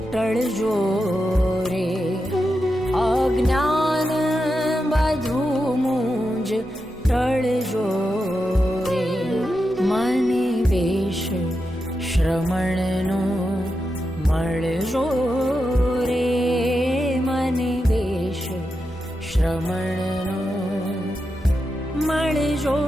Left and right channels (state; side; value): normal; both; correlation 0.88